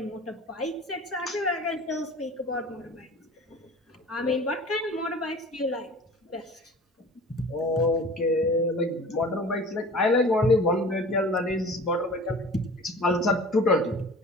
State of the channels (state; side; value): normal; both; correlation 0.41